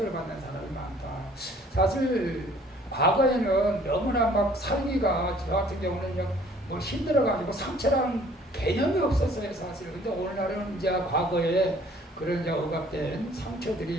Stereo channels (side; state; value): both; normal; correlation 0.56